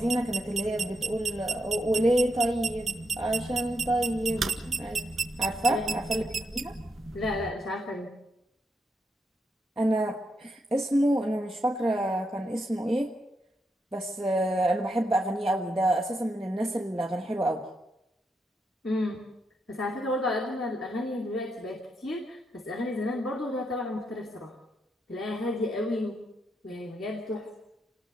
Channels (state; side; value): normal; both; correlation 0.82